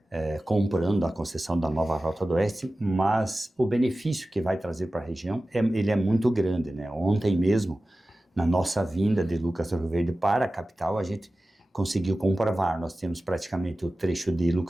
comprando a concessão da nova Rota do Oeste, mas o benefício que vai trazer para a região, ele é muito grande, né? Ontem mesmo, na nossa vinda de Lucas do Rio Verde para a capital, a gente conseguiu comprovar, nós temos praticamente o trecho de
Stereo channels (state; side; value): normal; both; correlation 0.96